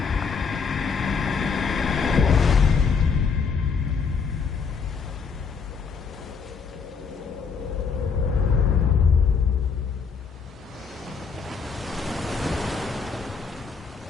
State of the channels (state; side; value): quieter; right; 5.6 dB